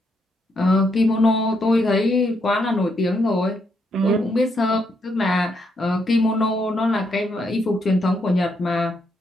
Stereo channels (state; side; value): normal; both; correlation 0.77